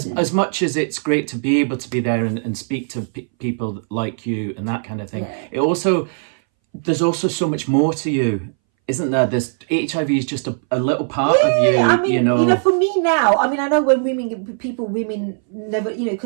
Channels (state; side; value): silent; left; 63 dB below the other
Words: much as it's great to be able to be there and speak to people like you and that kind of thing, there's also so much more to you, isn't there? There's HIV is just a little part of you. I mean, for me now, I mean, I know when women never,